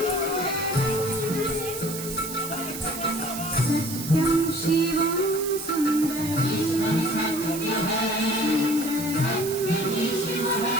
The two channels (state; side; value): noise; right; hiss, 8 dB below the sound